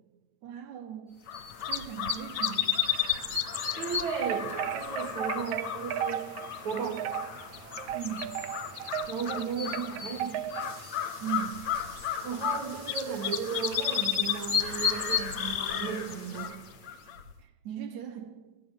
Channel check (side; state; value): left; late; 9.1 ms